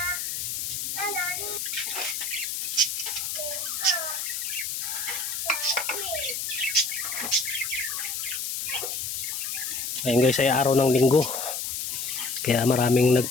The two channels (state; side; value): noise; left; hiss, 3 dB below the sound